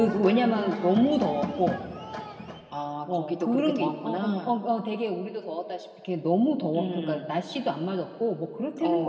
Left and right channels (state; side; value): identical; both; correlation 1.00